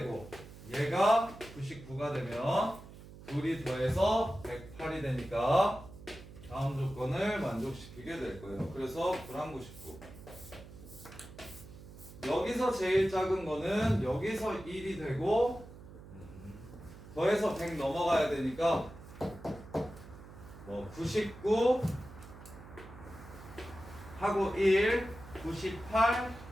얘가 99가 되면 둘이 더해서 108이 되니까 다음 조건을 만족시키게 될 거예요. 그래서 불안 99. 여기서 제일 작은 거는 여기서 1이 되고 더해서 100 넘어가야 되니까 뭐 99 하고 1, 98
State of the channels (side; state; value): right; noise; hum, 17 dB below the sound